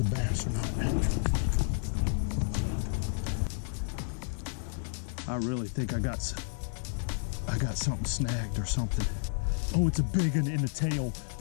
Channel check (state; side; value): silent; right; 57 dB below the other